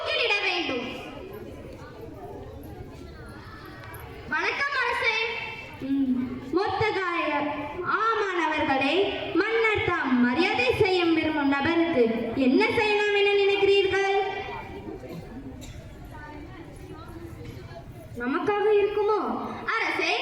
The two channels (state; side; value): identical; both; correlation 1.00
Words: மொர்தெகாய் ஆமான் அவர்களே, மன்னர் தாம் மரியாதை செய்ய விரும்பும் நபருக்கு என்ன செய்யலாம் என நினைக்கிறீர்கள்? நமக்காக இருக்குமோ? அரசே,